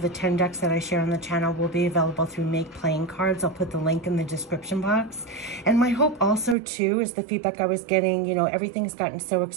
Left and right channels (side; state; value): left; drops out; at 6.6 s